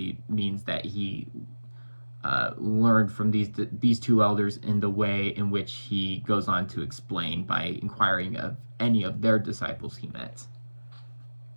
means that he learned from these two elders in the way in which he goes on to explain by inquiring of any of their disciples he met.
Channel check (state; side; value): inverted; both; correlation -1.00